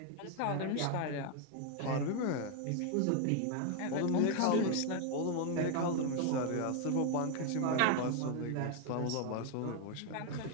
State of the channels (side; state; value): both; different; correlation 0.01